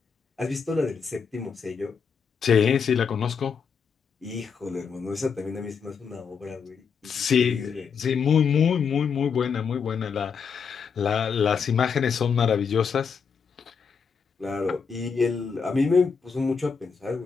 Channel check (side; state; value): right; quieter; 6.1 dB